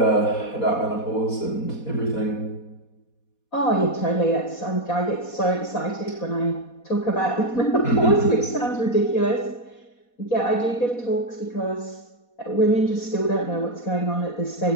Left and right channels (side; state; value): right; late; 4.2 ms